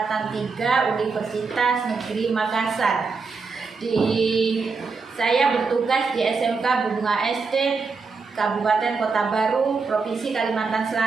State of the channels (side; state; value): left; quieter; 4.6 dB